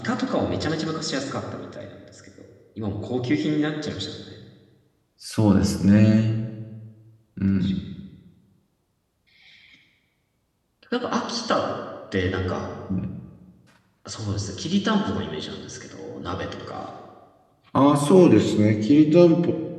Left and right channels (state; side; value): identical; both; correlation 1.00